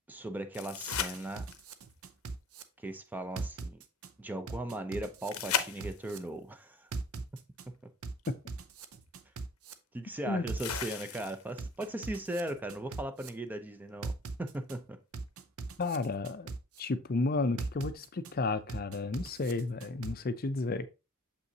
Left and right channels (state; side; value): normal; both; correlation 0.51